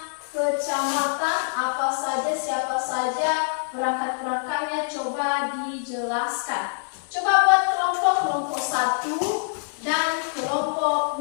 kecamatan, apa saja, siapa saja perangkat-perangkatnya, coba dijelaskan. Coba buat kelompok 1 dan kelompok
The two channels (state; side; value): silent; right; digital silence